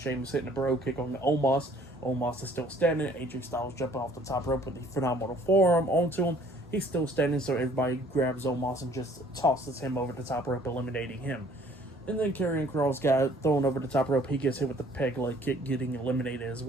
hitting a bro kick on the Omos. Omos is still standing. AJ Styles jumping off the top rope with the phenomenal forearm onto him. He's still standing, so everybody grabs Omos and just tosses him over the top rope, eliminating him. And then Karrion Kross got thrown over the top rope. He gets hit with the peg leg kick, getting eliminated as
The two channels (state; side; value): normal; both; correlation 0.57